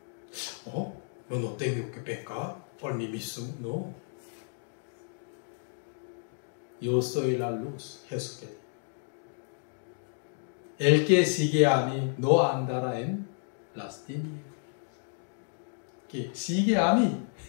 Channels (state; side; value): silent; right; digital silence